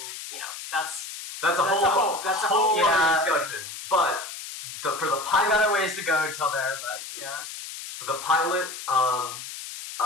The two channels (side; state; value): left; noise; hiss, 10 dB below the sound